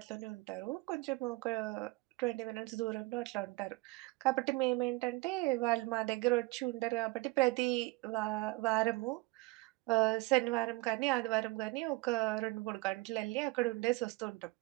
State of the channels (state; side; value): quieter; left; 22.8 dB